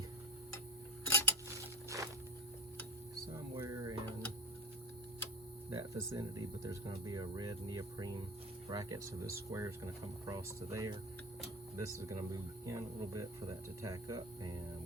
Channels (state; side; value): normal; both; correlation 0.29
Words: somewhere in that vicinity, but there's going to be a red neoprene bracket, so this square is going to come across to there. This is going to move in a little bit for that to tack up, and